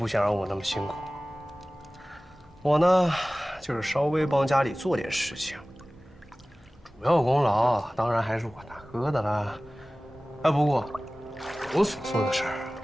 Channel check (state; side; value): normal; both; correlation 0.98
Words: 想让我那么辛苦。我呢，就是稍微帮家里做点事情，主要功劳当然还是我大哥的啦。哎，不过我所做的事儿